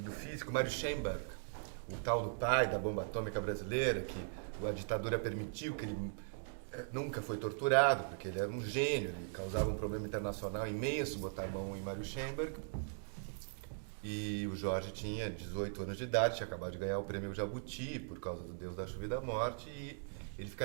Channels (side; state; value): left; silent; digital silence